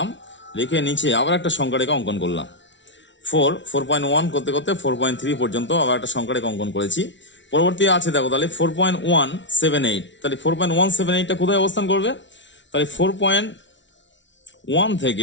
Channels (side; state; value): right; late; 0.54 ms